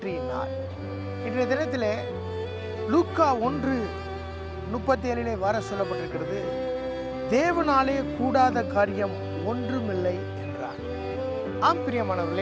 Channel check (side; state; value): both; identical; correlation 1.00